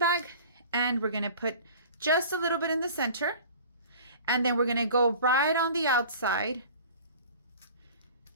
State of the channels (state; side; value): inverted; both; correlation -0.42